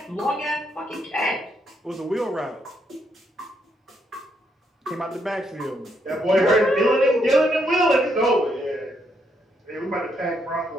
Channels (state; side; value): normal; both; correlation 0.76